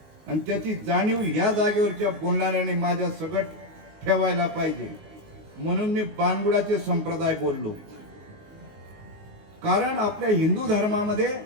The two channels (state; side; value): late; left; 19 ms